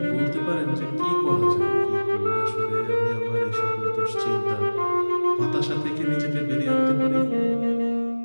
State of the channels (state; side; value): inverted; both; correlation -1.00